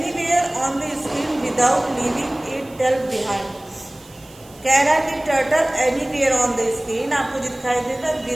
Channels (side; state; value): right; noise; hiss, 25 dB below the sound